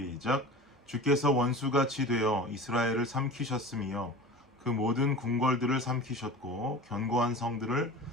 주께서 원수같이 되어 이스라엘을 삼키셨으며 그 모든 궁궐들을 삼키셨고 견고한 성들을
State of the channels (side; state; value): both; normal; correlation 0.35